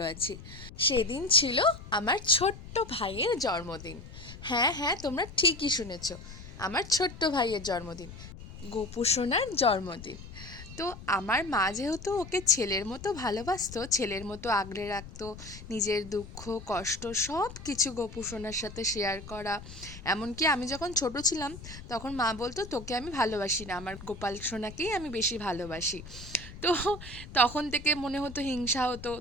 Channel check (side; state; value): left; noise; rumble, 14 dB below the sound